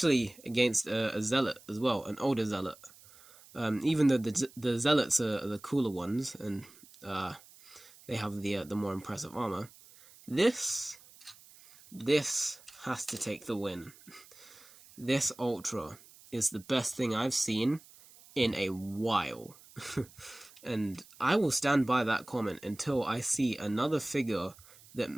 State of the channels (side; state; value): right; noise; hiss, 23 dB below the sound